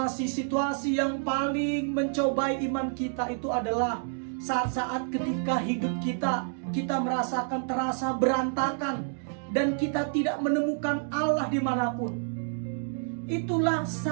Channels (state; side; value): silent; left; digital silence